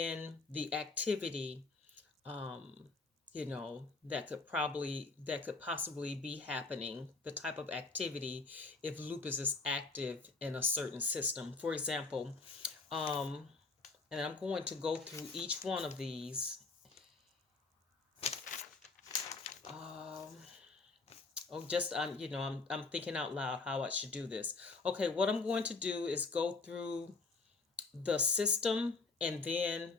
the activity um, that could possibly be happening, the type of activity if lupus is active in a certain system. For example, um, and I'm going to go through each one of these. Um, oh, just I'm thinking out loud how I should do this. Okay, what I'm going to do is go through the system and then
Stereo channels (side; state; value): right; quieter; 4.0 dB